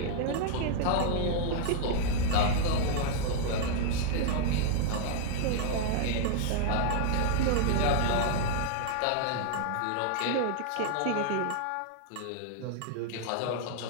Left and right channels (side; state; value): both; different; correlation -0.01